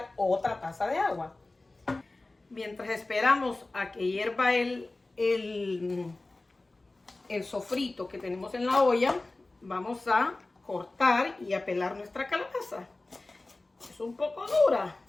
otra taza de agua. Mientras esperamos a que hierva el sofrito que tenemos en la olla, vamos a cortar y a pelar nuestra calabaza. Es un poco dura,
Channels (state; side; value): quieter; right; 3.0 dB